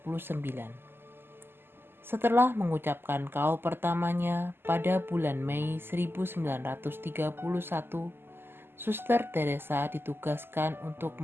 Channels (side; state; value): left; late; 0.11 ms